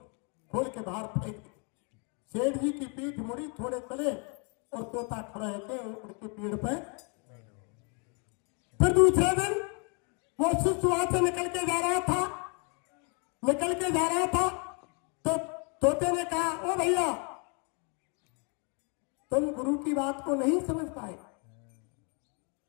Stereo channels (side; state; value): right; quieter; 36.3 dB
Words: के बाहर फेंक दिया। सेठ जी की पीठ मुड़ी, थोड़े चले और तोता खड़ा है उनके पेड़ पे। फिर दूसरे दिन वो शिष्य वहां से निकल के जा रहा था तो तोते ने कहा, ओ भैया तुम गुरु की बात को नहीं समझ पाए